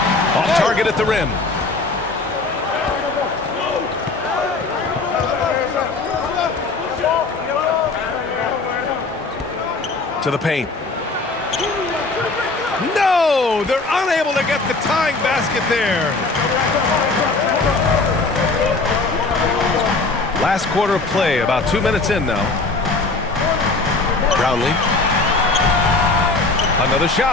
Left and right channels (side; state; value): right; quieter; 3.6 dB